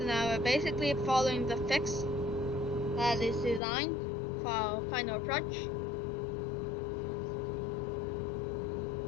now we're basically following the fix that is designed for our final approach.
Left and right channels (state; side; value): drops out; right; at 3.6 s